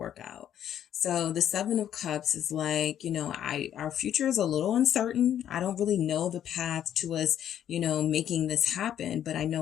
out. So the Seven of Cups is like, you know, our future is a little uncertain. I don't really know the path to us, you know, making this happen, but I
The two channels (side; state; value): right; quieter; 10.3 dB